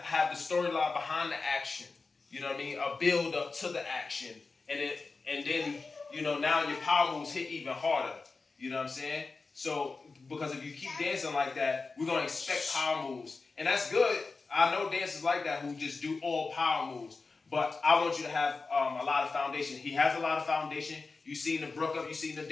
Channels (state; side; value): quieter; right; 4.1 dB